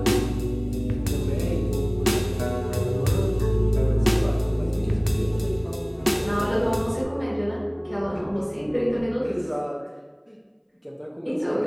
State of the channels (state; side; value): identical; both; correlation 1.00